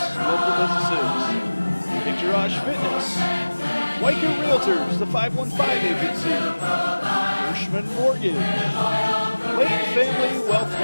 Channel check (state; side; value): inverted; both; correlation -1.00